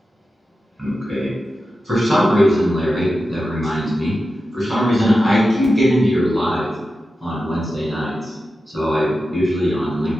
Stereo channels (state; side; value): normal; both; correlation 0.91